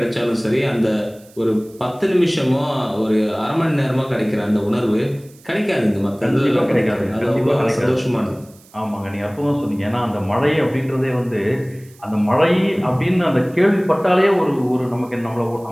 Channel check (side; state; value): right; noise; hiss, 27 dB below the sound